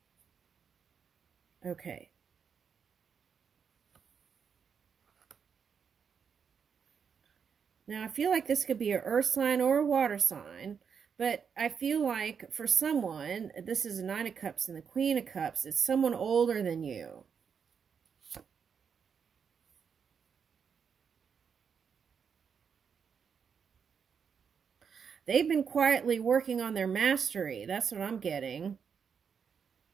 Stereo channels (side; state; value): left; quieter; 6.7 dB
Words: Okay. Now, I feel like this could be an earth sign or a water sign, but I feel like for someone, this is a Nine of Cups and the Queen of Cups, it's someone older than you. They've been quietly working on their mastery. That's what I'm getting.